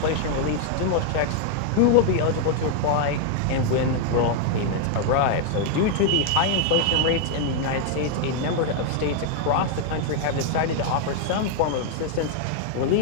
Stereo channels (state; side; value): different; both; correlation 0.00